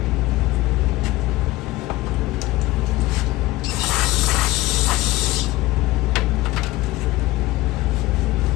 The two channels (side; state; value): right; quieter; 18.5 dB